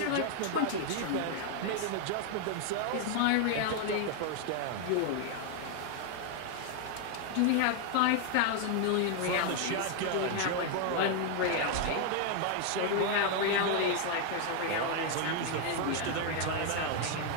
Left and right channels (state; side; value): different; both; correlation 0.01